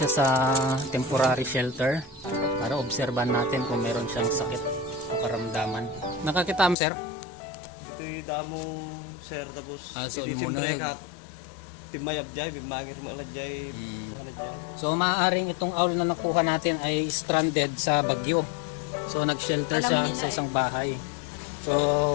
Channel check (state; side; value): drops out; right; at 6.8 s